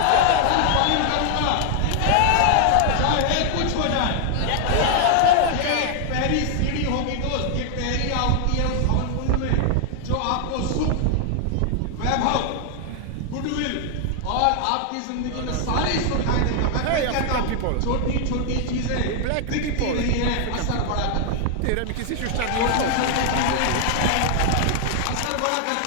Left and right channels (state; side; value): different; both; correlation 0.00